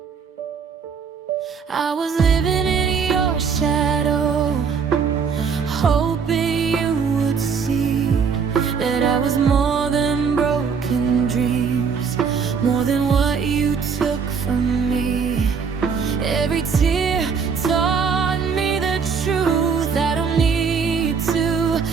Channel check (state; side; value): quieter; left; 6.0 dB